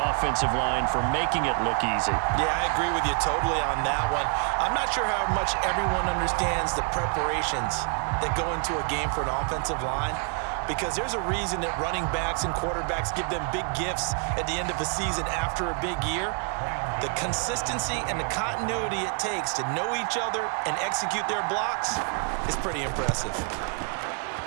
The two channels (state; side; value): quieter; left; 39.3 dB